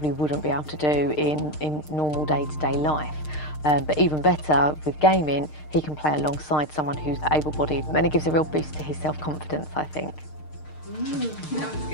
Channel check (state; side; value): late; right; 6.6 ms